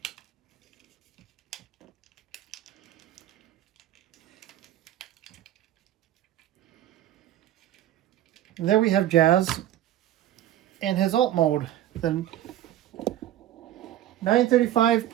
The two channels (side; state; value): left; quieter; 12.5 dB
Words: And there we have Jazz in his alt mode, the 935